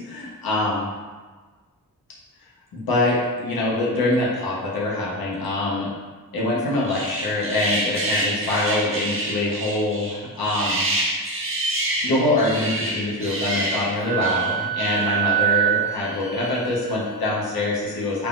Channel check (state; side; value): normal; both; correlation 0.16